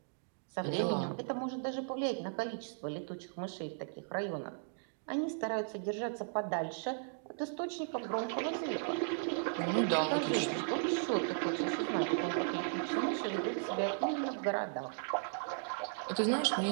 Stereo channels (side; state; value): left; silent; digital silence